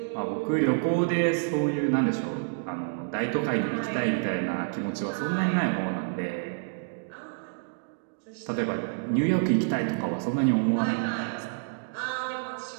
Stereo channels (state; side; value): silent; left; digital silence